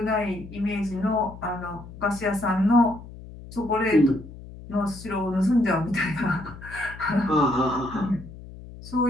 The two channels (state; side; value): noise; left; hum, 15 dB below the sound